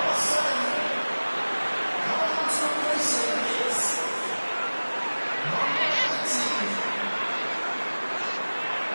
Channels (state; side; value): inverted; both; correlation -1.00